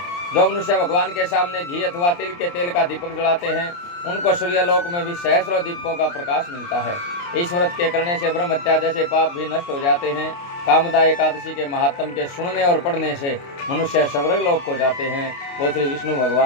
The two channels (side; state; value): right; late; 29 ms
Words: जो मनुष्य भगवान के सामने घी अथवा तिल के तेल का दीपक जलाते हैं, उनको सूर्यलोक में भी सहस्रों दीपकों का प्रकाश मिलता है। इस व्रत के करने से ब्रह्म हत्या जैसे पाप भी नष्ट हो जाते हैं। कामदा एकादशी के महात्म के सुनने और पढ़ने से मनुष्य स्वर्गलोक को जाते हैं। बोल श्री विष्णु